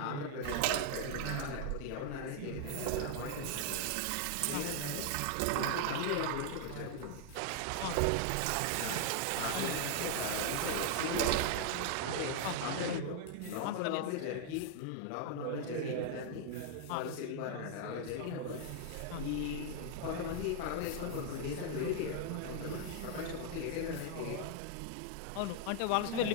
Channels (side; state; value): both; different; correlation 0.00